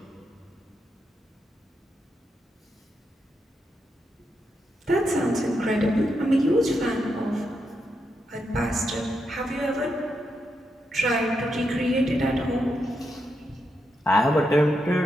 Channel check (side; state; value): both; normal; correlation 0.83